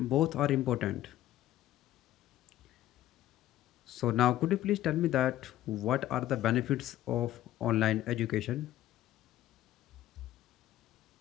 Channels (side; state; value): right; quieter; 13.8 dB